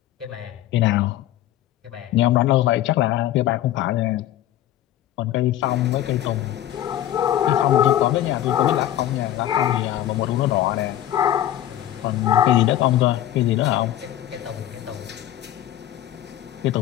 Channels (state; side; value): quieter; right; 12.6 dB